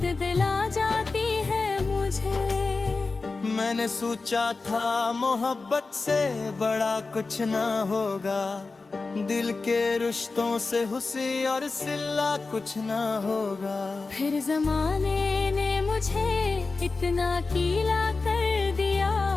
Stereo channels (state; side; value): quieter; right; 3.9 dB